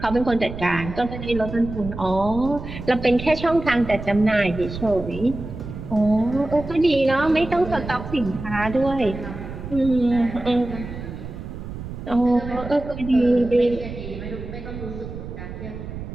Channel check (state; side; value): noise; right; rumble, 9 dB below the sound